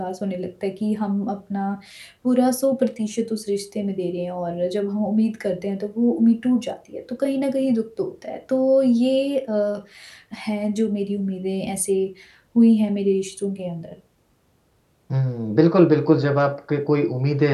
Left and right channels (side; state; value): both; identical; correlation 1.00